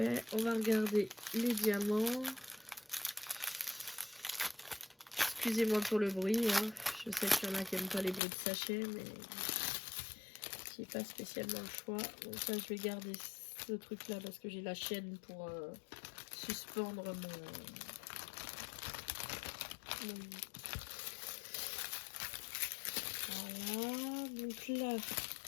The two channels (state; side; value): drops out; right; at 8.2 s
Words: On va regarder les diamants. Excusez-moi pour le bruit. Hein. Je sais qu'il y en a qui n'aiment pas les bruits de sachet, mais j'ai pas spécialement le choix. Donc ça, je vais garder ce truc là parce que j'ai la chaîne pour suspendre mon... Voilà, donc là,